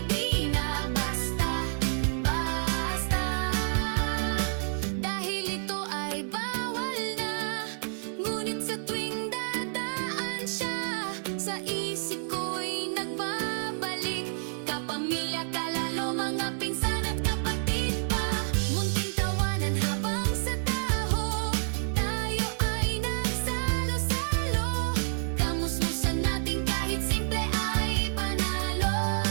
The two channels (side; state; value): left; silent; 59 dB below the other